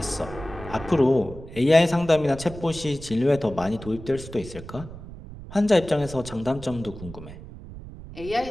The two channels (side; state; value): right; noise; rumble, 14 dB below the sound